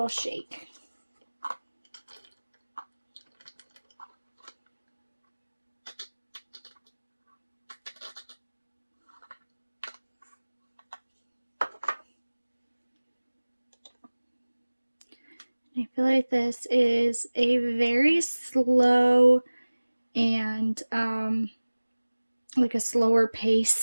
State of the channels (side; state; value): both; inverted; correlation -1.00